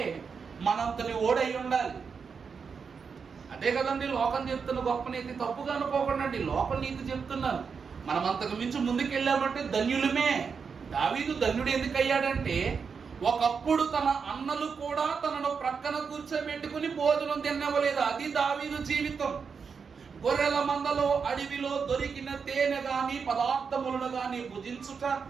మనంతని ఓడై ఉండాలి. అదే కదండి లోకం చెప్తున్న గొప్ప నీతి. తప్పుగా అనుకోకండి, లోక నీతి చెప్తున్నాను. మనం అంతకు మించి ముందుకెళ్ళామంటే ధన్యులమే. దావీదు ధన్యుడు ఎందుకు అయ్యాడంటే, ఒకప్పుడు తన అన్నలు కూడా తనను ప్రక్కన కూర్చోబెట్టుకుని భోజనం తినవలేదు. అది దావీదు జీవితం. గొర్రెల మందలో అడవిలో దొరికిన తేనె గాని పదార్థములను గాని భుజించుట,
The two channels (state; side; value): quieter; left; 5.8 dB